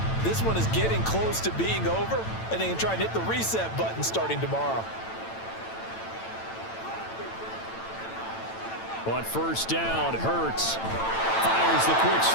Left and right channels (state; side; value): late; right; 9.0 ms